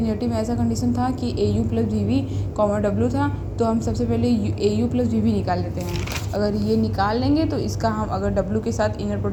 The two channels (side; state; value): both; identical; correlation 1.00